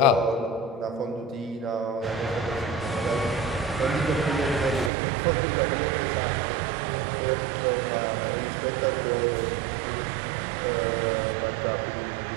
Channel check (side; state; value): left; drops out; at 4.9 s